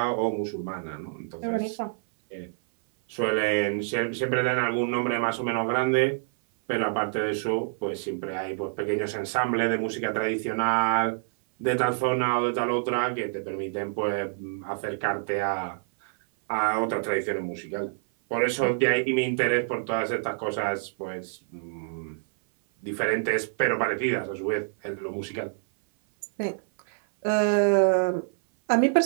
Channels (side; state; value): left; silent; 57 dB below the other